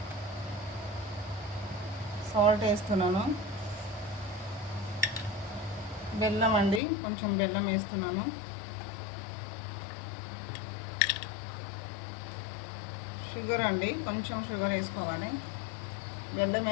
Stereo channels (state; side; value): drops out; right; at 6.8 s